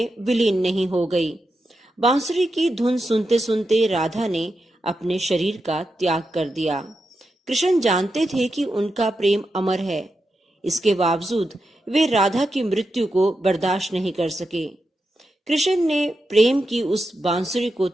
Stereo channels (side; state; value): both; normal; correlation 0.88